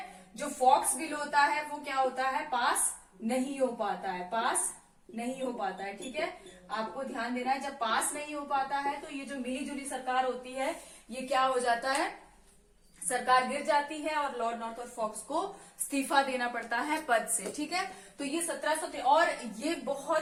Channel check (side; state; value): both; identical; correlation 1.00